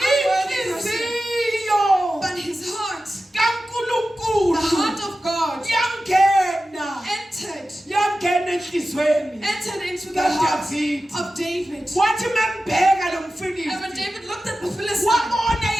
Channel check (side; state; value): both; normal; correlation 0.94